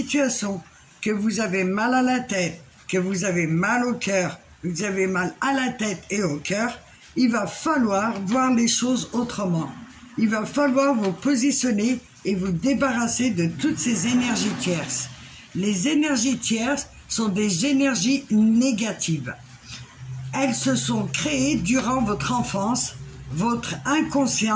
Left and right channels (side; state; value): both; identical; correlation 1.00